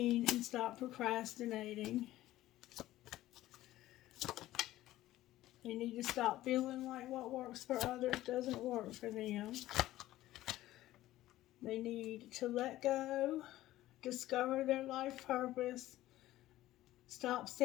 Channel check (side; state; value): right; quieter; 15.3 dB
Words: and stop procrastinating. They need to stop feeling like what works for others doesn't work for them. They need to let go, discover their life purpose, stop